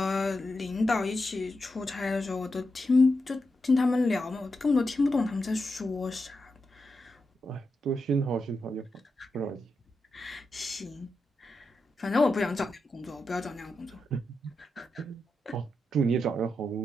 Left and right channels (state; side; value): normal; both; correlation 0.87